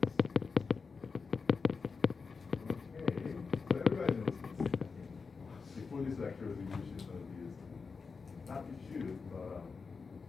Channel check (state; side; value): quieter; right; 4.9 dB